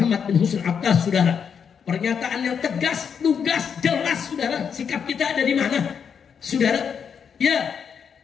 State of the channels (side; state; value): right; quieter; 7.0 dB